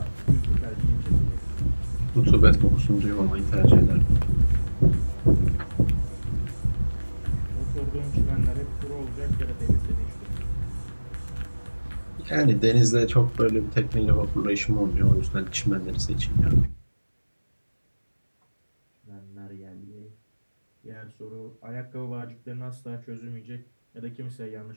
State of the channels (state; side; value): inverted; both; correlation -1.00